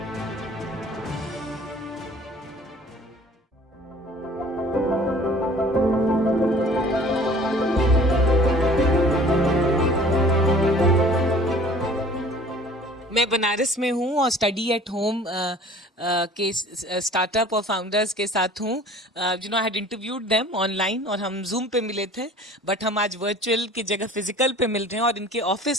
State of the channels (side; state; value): both; normal; correlation 0.49